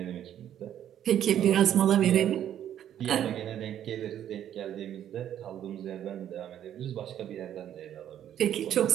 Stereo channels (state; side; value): quieter; left; 10.6 dB